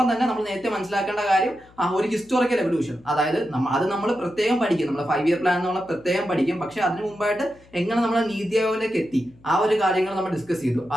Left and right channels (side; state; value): left; noise; hum, 27 dB below the sound